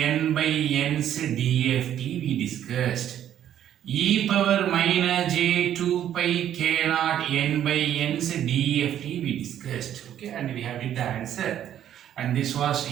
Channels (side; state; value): left; quieter; 10.8 dB